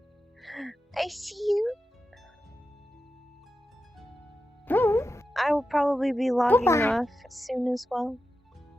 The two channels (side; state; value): both; normal; correlation 0.91